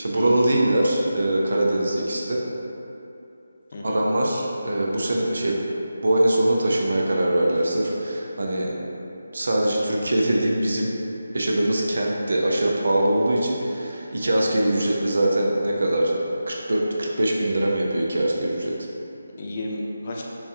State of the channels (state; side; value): inverted; both; correlation -0.92